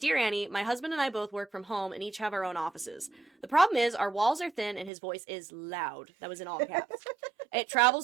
Annie, my husband and I both work from home and each have our own offices. The problem is our walls are thin and his voice is loud. That was in all caps. It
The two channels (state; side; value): drops out; left; at 4.9 s